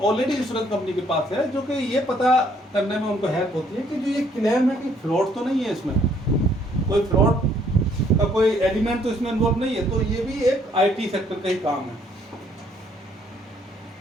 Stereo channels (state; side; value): normal; both; correlation 0.65